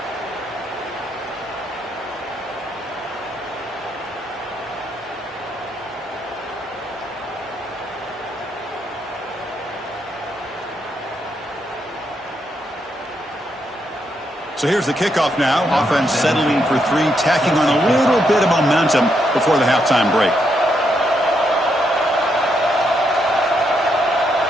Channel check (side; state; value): both; normal; correlation 0.78